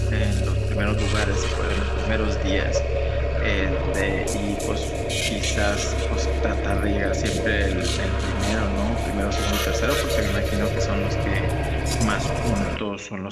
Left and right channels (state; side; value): identical; both; correlation 1.00